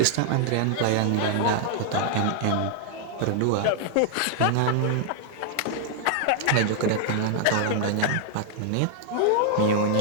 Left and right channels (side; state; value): both; different; correlation 0.00